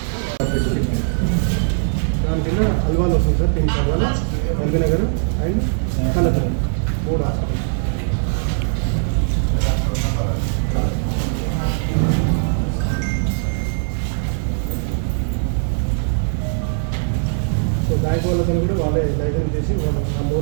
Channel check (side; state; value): left; silent; digital silence